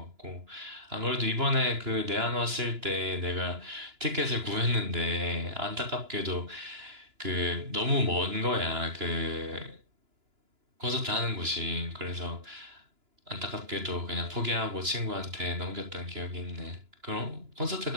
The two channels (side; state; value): left; late; 2.9 ms